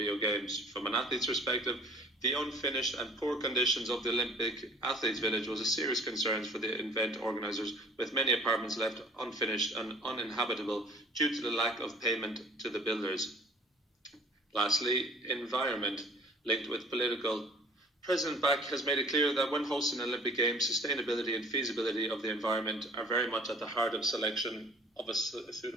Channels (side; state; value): both; normal; correlation 0.50